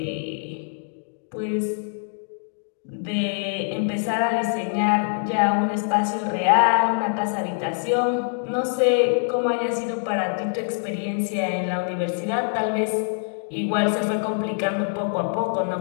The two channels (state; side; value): silent; right; 62 dB below the other